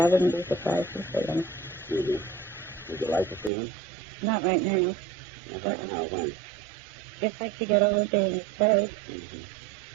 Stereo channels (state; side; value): drops out; left; at 3.5 s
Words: wouldn't be surprised to see them. Mm-hmm. Would you like to see them? Not right now. Not right now. When? If I could get over being afraid. Mm-hmm.